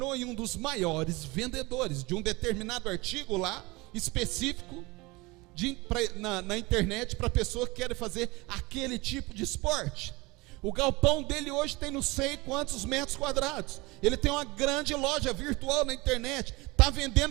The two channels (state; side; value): quieter; left; 23.6 dB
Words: um dos maiores vendedores de um determinado artigo lá, específico, na internet, para pessoa que quer fazer aquele tipo de esporte. O galpão dele hoje tem não sei quantos metros quadrados. Ele tem uma grande loja virtual na internet, está